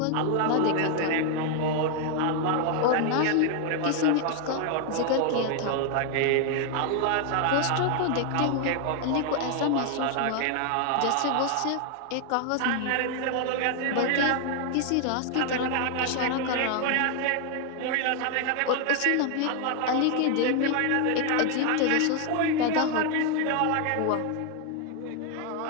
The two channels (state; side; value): different; both; correlation 0.00